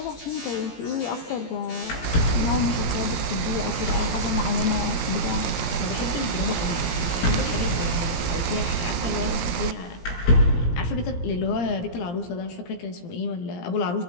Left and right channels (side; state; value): right; late; 17 ms